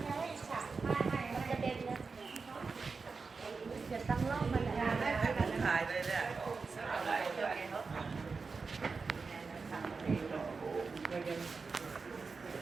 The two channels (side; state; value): left; quieter; 4.6 dB